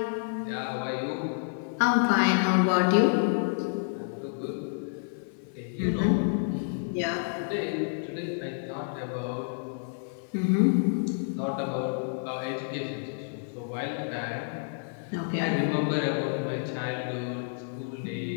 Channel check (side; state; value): right; silent; digital silence